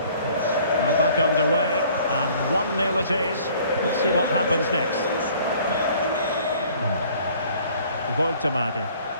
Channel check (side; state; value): both; inverted; correlation -0.55